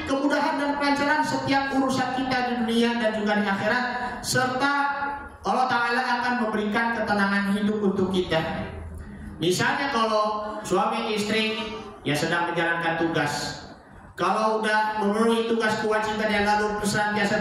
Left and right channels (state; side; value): identical; both; correlation 1.00